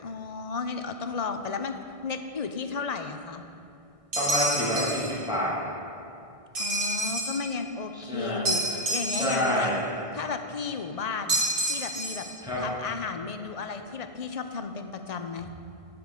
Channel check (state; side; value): late; left; 1.6 ms